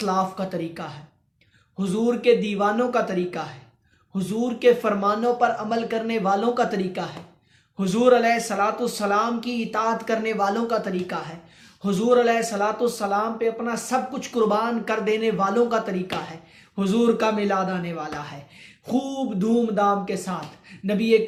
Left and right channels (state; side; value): identical; both; correlation 1.00